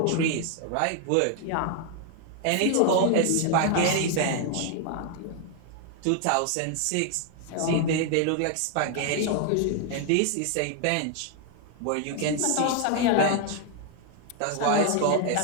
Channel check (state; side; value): different; both; correlation 0.00